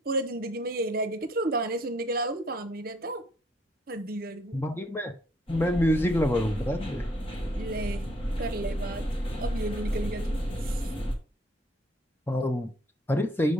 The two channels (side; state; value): both; normal; correlation 0.65